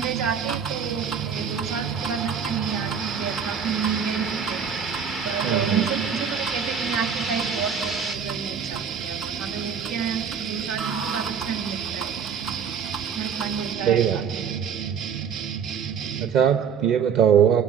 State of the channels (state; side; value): quieter; left; 7.0 dB